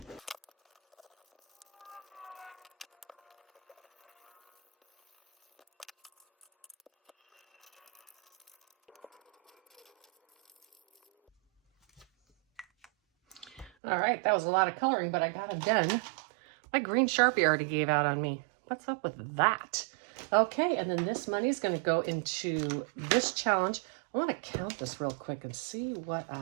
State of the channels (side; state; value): left; drops out; at 13.7 s